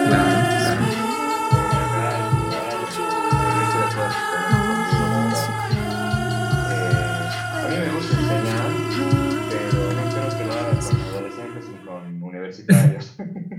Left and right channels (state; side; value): identical; both; correlation 1.00